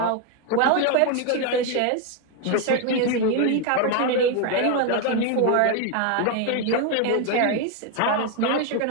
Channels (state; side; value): different; both; correlation 0.01